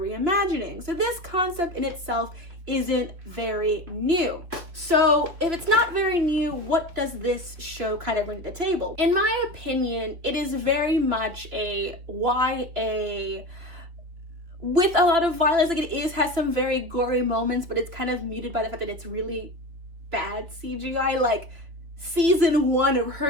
So this concept in itself isn't very new. So if it's not very new, what does this show kind of bring to the table? In my opinion, it is very much a YA with a lot of violence. Like, has some very gory moments, but it's kind of muted by the fact that it's really bad CGI. Like, season 1 of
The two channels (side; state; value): left; late; 3.1 ms